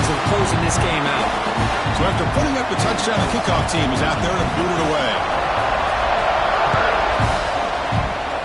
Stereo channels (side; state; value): both; identical; correlation 1.00